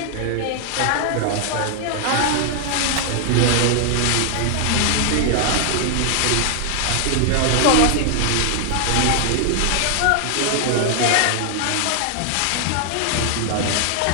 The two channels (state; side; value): different; both; correlation 0.00